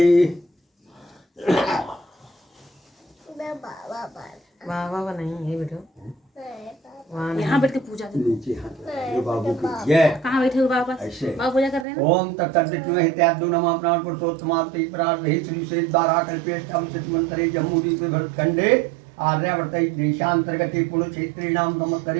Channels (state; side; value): drops out; left; at 11.9 s